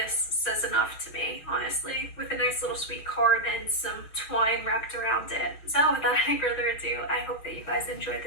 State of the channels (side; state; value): right; late; 6.4 ms